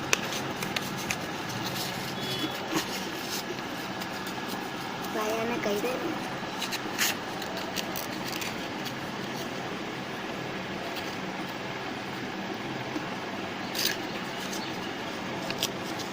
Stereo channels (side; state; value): both; identical; correlation 1.00